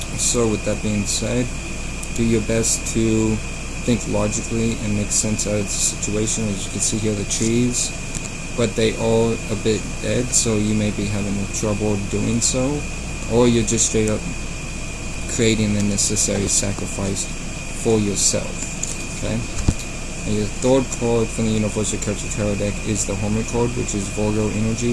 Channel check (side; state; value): both; identical; correlation 1.00